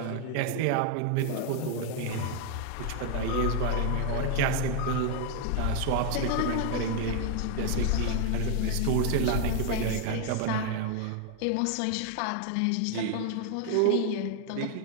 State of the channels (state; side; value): different; both; correlation 0.00